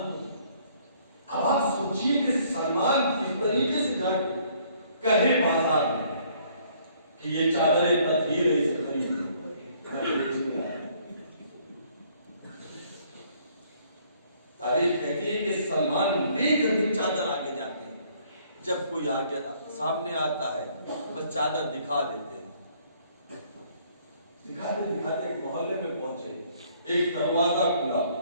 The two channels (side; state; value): both; inverted; correlation -0.62